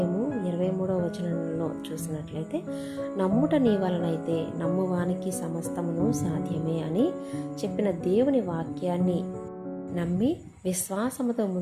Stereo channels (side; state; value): both; identical; correlation 1.00